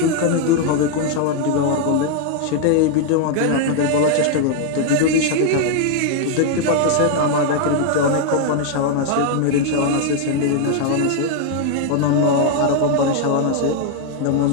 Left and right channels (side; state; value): both; different; correlation 0.00